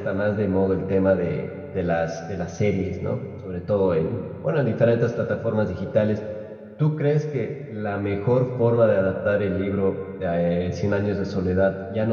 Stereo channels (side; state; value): both; identical; correlation 1.00